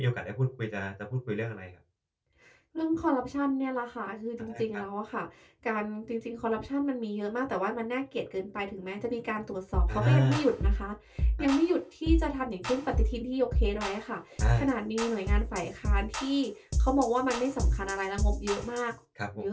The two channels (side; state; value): both; identical; correlation 1.00